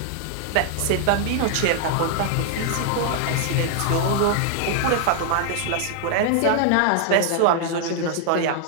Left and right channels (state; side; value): different; both; correlation 0.00